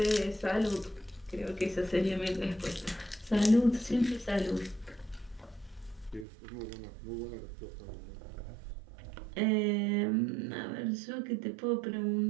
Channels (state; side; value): drops out; left; at 6.2 s